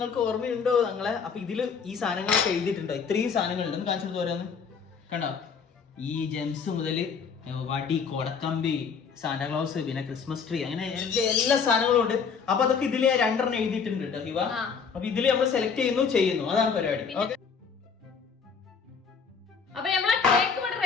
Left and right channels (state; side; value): quieter; right; 6.0 dB